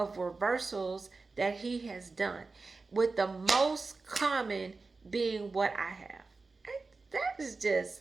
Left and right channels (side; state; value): left; quieter; 3.9 dB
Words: reversals that he has done, with the most common being what I have. That is just,